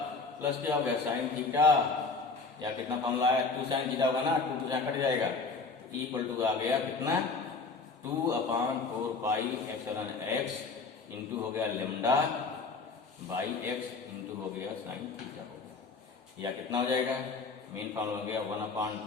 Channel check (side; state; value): right; quieter; 4.2 dB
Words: प्लस क्या हो गया साइन थीटा, या कितना फॉर्मूला है 2 साइन थीटा होगा ना, 2 से कट जाएगा, तो E इक्वल टू आ गया कितना 2/4 पाई एप्सिलॉन x इंटू हो गया लेमडा बाई x इंटू हो गया साइन थीटा हो गया, या कितना हो जाएगा, मेन फॉर्मूला हो गया